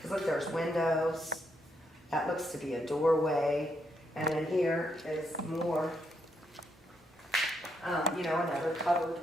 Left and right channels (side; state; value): both; normal; correlation 0.78